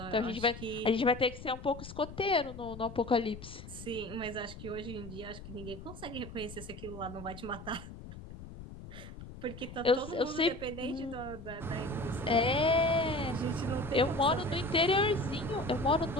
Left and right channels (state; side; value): noise; left; rumble, 13 dB below the sound